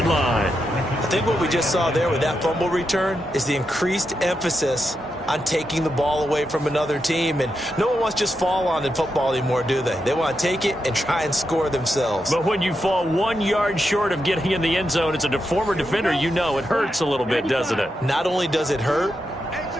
line. I think what we just saw there with that fumble return is the increased emphasis on taking the ball away from another team. And no one wants to just fall on in football anymore, do they? They want to take it and try and score themselves. But when you fall 1 yard short of getting in the end zone as a former defender, you know it hurts a little bit, doesn't it? Not only does it hurt,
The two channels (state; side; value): normal; both; correlation 0.86